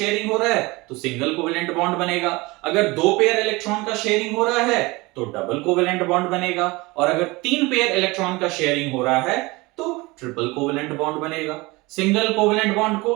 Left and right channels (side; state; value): left; quieter; 23.0 dB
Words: हो रहा है तो सिंगल कोवेलेंट बॉन्ड बनेगा, अगर 2 पेयर इलेक्ट्रॉन का शेयरिंग हो रहा है तो डबल कोवेलेंट बॉन्ड बनेगा, और अगर 3 पेयर इलेक्ट्रॉन का शेयरिंग हो रहा है तो ट्रिपल कोवेलेंट बॉन्ड बनेगा। सिंगल कोवेलेंट बॉन्ड